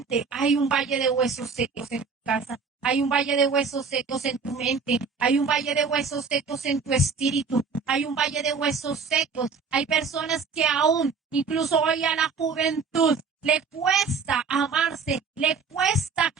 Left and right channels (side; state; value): left; quieter; 5.2 dB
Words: hay un valle de huesos secos en tu casa, hay un valle de huesos secos en tu mente, hay un valle de huesos secos en tu espíritu, hay un valle de huesos secos. Hay personas que aún, incluso hoy a la juventud, le cuesta amarse, le cuesta